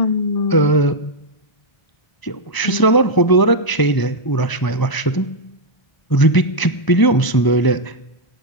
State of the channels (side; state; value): right; late; 1.0 ms